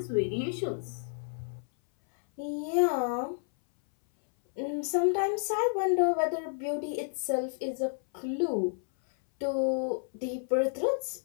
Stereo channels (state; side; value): silent; right; 57 dB below the other